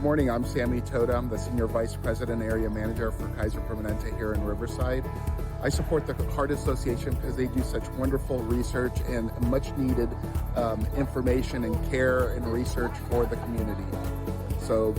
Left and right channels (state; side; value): identical; both; correlation 1.00